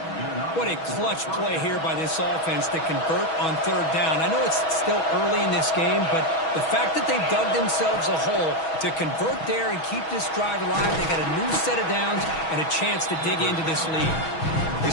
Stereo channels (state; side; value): late; right; 6.2 ms